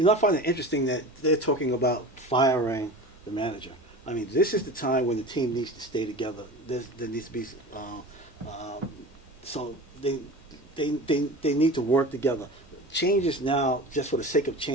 know, I find it interesting that they're talking about firing the manager. I mean, this is the time when the team needs to stay together. There needs to be so they need to work together. Changes now, just for the sake of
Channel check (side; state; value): both; normal; correlation 0.34